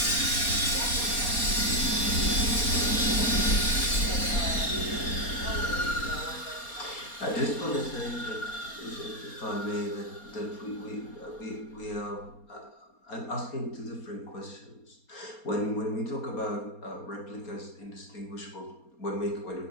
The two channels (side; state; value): right; late; 4.3 ms